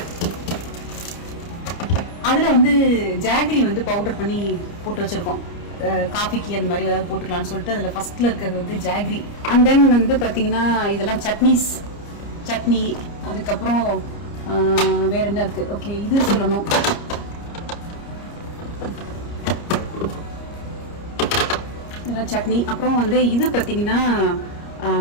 அதில் வந்து ஜாகரி வந்து பவுடர் பண்ணி போட்டு வச்சுருக்கோம். காஃபிக்கு அந்த மாதிரி ஏதாவது போட்டுக்கலாம்னு சொல்லிட்டு அதில் ஃபஸ்ட்டில் இருக்கிறது வந்து ஜாகரி. அண்ட் தென் வந்து பார்த்தீங்கன்னா இதெல்லாம் சட்னி. அதுக்கப்புறம் வேற என்ன இருக்குது, ஓகே இது சொல்லணும். இதெல்லாம் சட்னி. அப்புறம் வந்து இது பார்த்தீங்கன்னா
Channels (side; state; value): right; late; 29 ms